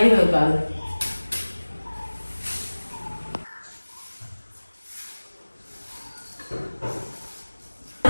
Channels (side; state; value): both; inverted; correlation -1.00